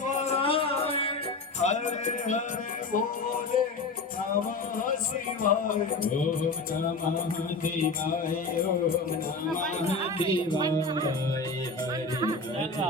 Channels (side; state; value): right; quieter; 3.6 dB